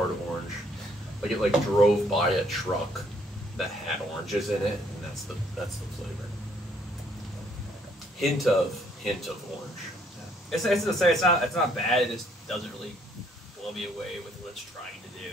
of orange. Like it like drove by a truck that had oranges in it, and that's the flavor. Hint of orange. It's not bad. It just doesn't really blow me away with what it's trying to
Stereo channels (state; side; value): normal; both; correlation 0.66